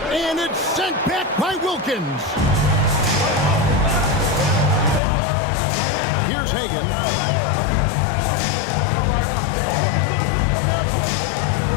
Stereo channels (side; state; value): right; drops out; at 5.0 s